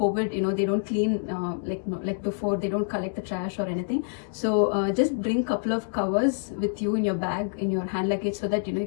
they don't clean like before. They don't collect the trash or anything. So just bring couple of covers with you in your bag, in your hand luggage, so that you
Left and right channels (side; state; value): right; silent; digital silence